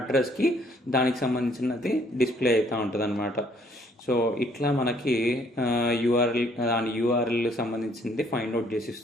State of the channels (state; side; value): normal; both; correlation 0.64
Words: దానికి సంబంధించినది డిస్ప్లే అవుతూ ఉంటుంది అనమాట. సో ఇట్లా మనకి దాని యూఆర్ఎల్ సంబంధించింది ఫైండ్ అవుట్